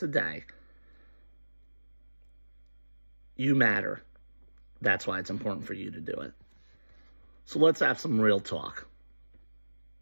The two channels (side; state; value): both; inverted; correlation -1.00